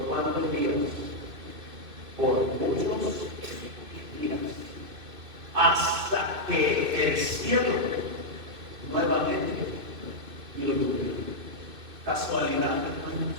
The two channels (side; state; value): left; late; 2.6 ms